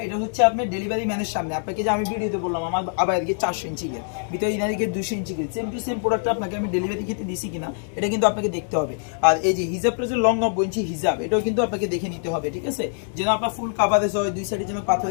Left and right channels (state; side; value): silent; right; 63 dB below the other